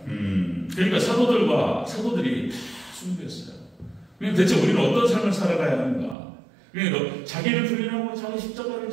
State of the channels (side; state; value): left; drops out; at 6.2 s